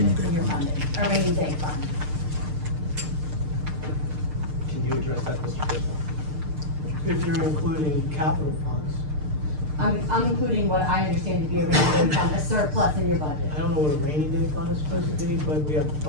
in your funding, a rainy day fund. Can you address that, Mr. Bisbal? If you're including capital funds, I'm including what I understand to be a rainy day fund, a surplus in your budget. I don't know what a rainy day fund is supposed to be, but we have a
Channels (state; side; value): late; left; 6.6 ms